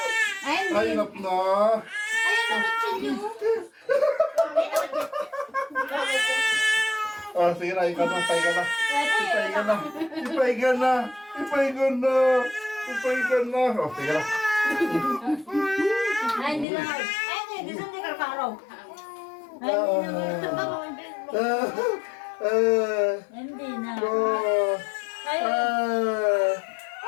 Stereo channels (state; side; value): drops out; right; at 16.7 s